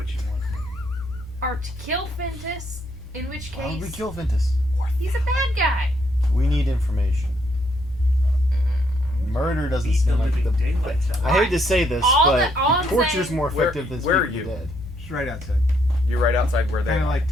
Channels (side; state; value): both; normal; correlation 0.73